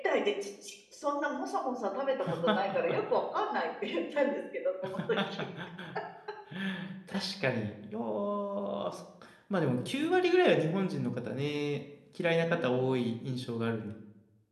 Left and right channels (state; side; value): identical; both; correlation 1.00